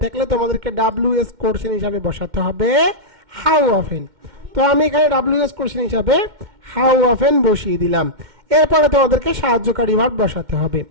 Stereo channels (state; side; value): late; left; 2.1 ms